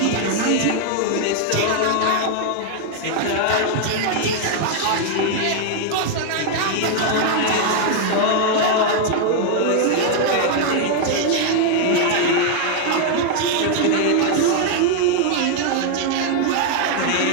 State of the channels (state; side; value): different; both; correlation 0.00